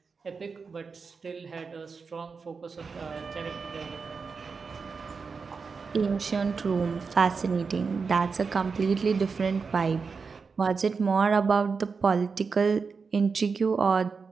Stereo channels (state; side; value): quieter; left; 5.0 dB